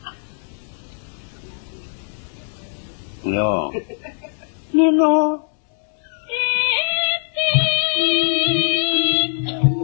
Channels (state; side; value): silent; right; digital silence